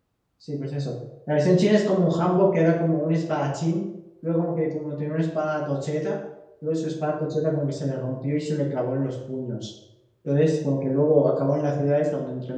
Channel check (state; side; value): identical; both; correlation 1.00